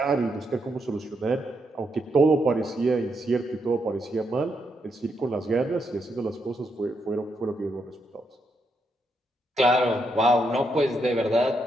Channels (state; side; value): normal; both; correlation 0.80